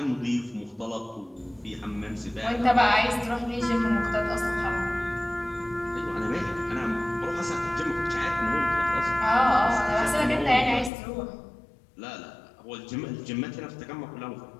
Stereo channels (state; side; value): drops out; right; at 10.9 s